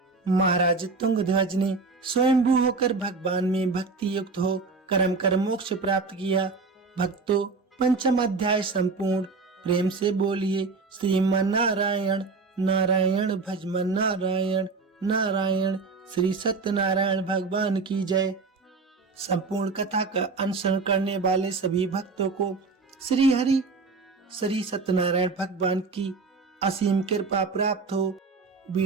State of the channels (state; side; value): quieter; left; 4.2 dB